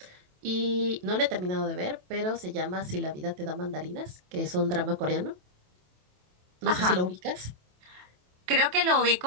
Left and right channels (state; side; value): late; left; 27 ms